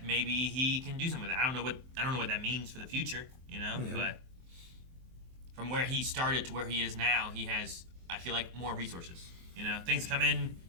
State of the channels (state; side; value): late; left; 23 ms